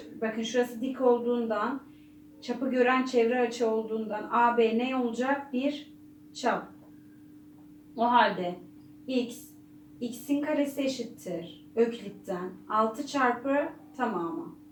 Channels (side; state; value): both; identical; correlation 1.00